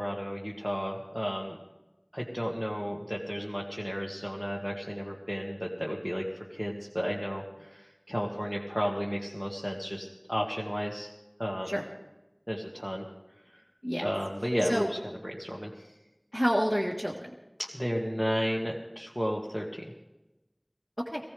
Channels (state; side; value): identical; both; correlation 1.00